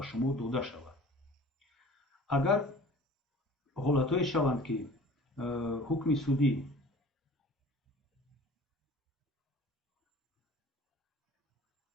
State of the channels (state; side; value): normal; both; correlation 0.45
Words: шумо дода шавад. агар ҳолатҳое шаванд ки ҳукми судӣ